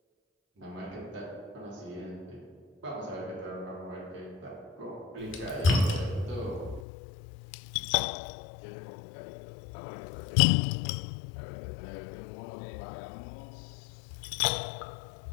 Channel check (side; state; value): right; drops out; at 6.9 s